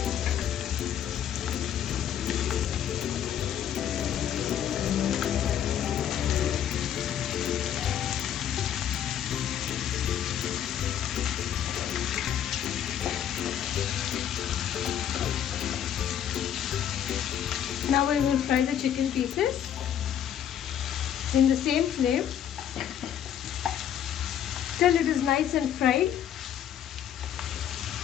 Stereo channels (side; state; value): right; quieter; 9.9 dB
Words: Now we will fry the chicken pieces in the same flame till it is nice and fried.